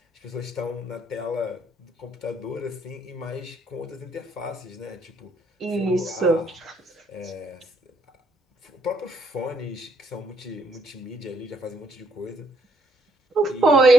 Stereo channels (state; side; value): normal; both; correlation 0.70